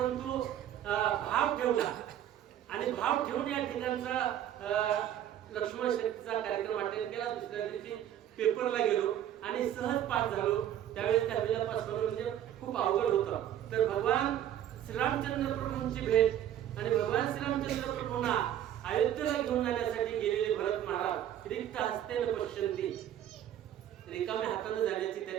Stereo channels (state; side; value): quieter; left; 11.1 dB